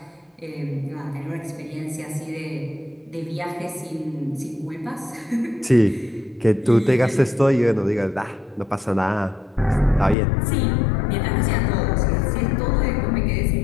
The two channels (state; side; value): drops out; right; at 10.2 s